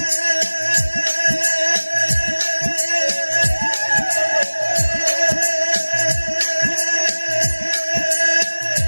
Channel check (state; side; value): inverted; both; correlation -1.00